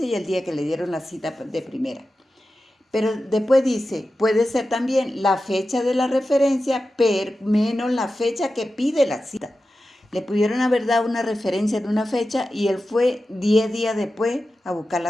y el día que le dieron la cita de primera. Pero después dice, puede ser también la fecha de la referencia menos la fecha que pide la cita. Le pudieron haber dado una referencia en una fecha y él fue 10 días después a buscar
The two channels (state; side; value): normal; both; correlation 0.93